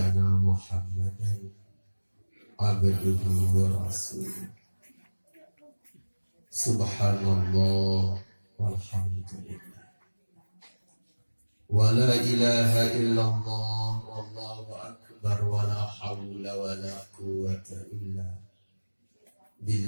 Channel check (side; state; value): both; inverted; correlation -1.00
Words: Muhammadan abduhu wa rasuluh. Subhanallah walhamdulillah wa la ilaha illallah wallahu akbar wa la hawla wa la quwwata illa